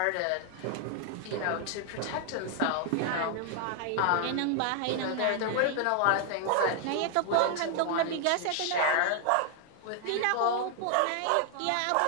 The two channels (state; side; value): different; both; correlation 0.00